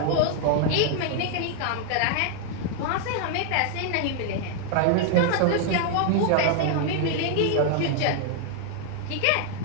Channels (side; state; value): both; different; correlation 0.00